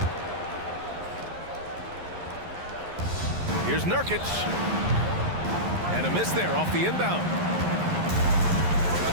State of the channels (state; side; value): late; left; 11 ms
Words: Here's Nurkic. And a miss there off the inbound.